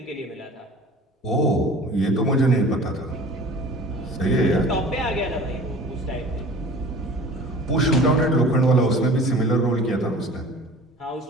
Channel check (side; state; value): both; normal; correlation 0.43